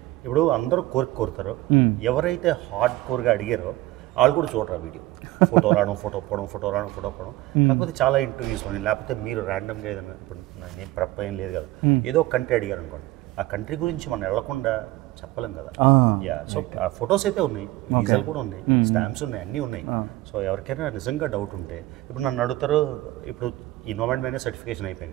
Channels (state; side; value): quieter; left; 17.9 dB